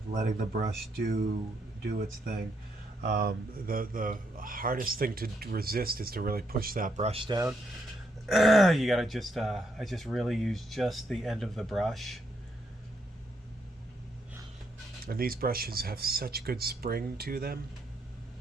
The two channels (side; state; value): both; normal; correlation 0.77